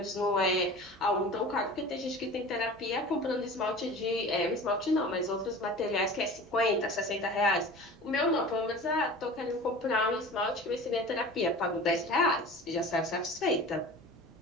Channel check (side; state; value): both; normal; correlation 0.38